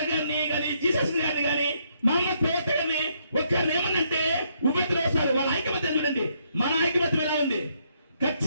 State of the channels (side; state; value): both; inverted; correlation -0.73